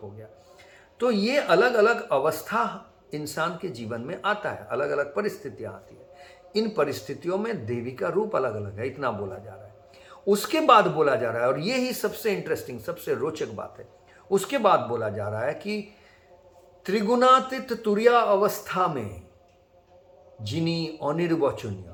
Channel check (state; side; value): identical; both; correlation 1.00